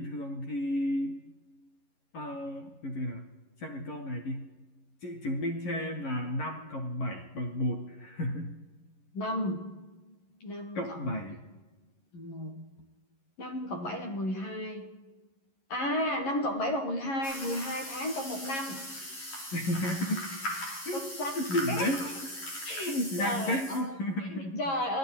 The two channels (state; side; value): late; right; 11 ms